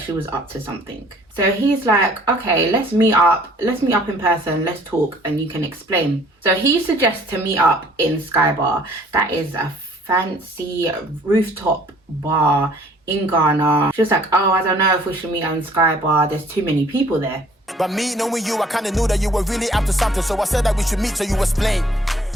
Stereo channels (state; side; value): normal; both; correlation 0.56